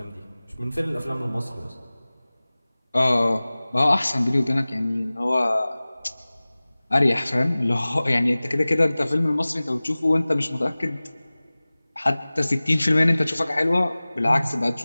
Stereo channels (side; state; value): both; inverted; correlation -0.99